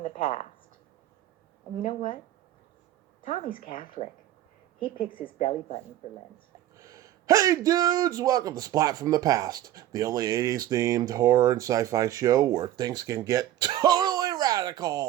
the Past. And you know what? Tommy's Catholic. He picks his belly button for Lent. Hey dudes, welcome to Splat from the Past, the only 80s themed horror and sci-fi show where things can get totally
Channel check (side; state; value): left; quieter; 12.9 dB